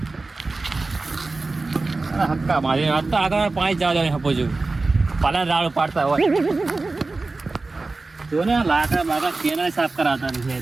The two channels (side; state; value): left; quieter; 3.5 dB